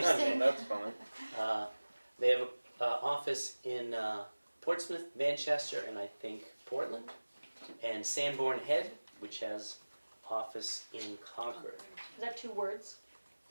That's fun. They have an office in Portsmouth, Manchester, and I think Portland, and Sanborn Head, which has office in Concord. Is that 2 words?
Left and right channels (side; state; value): both; inverted; correlation -1.00